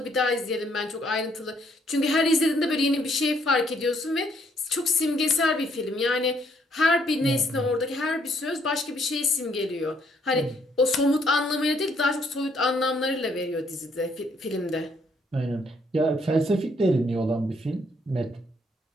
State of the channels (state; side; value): normal; both; correlation 0.69